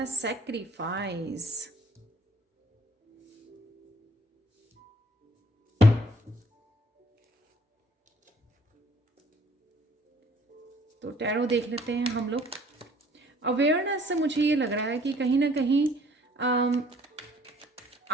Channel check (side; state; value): both; normal; correlation 0.57